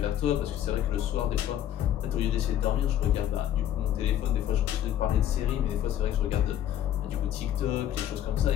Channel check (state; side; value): quieter; right; 11.1 dB